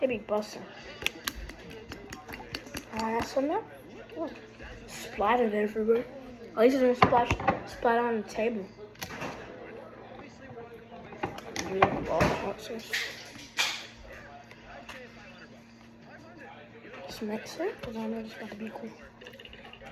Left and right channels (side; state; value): both; identical; correlation 1.00